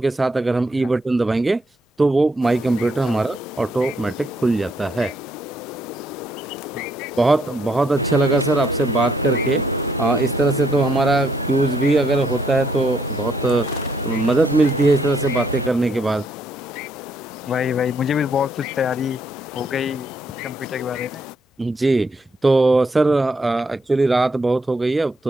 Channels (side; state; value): both; normal; correlation 0.72